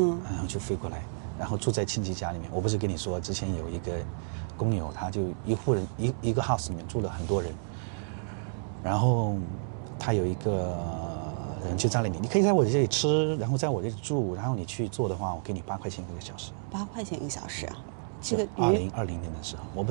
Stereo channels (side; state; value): left; silent; digital silence